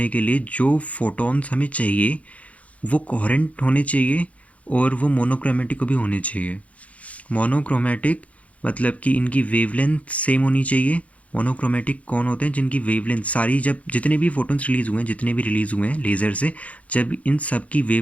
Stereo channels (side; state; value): right; late; 0.066 ms